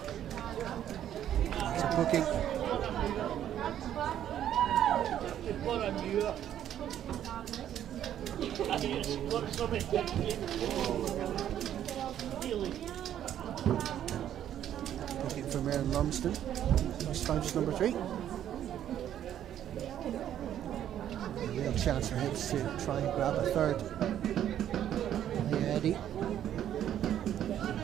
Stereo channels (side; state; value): left; quieter; 10.8 dB